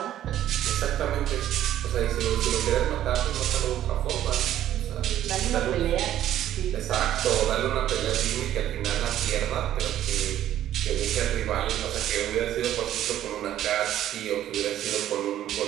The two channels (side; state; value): left; quieter; 12.1 dB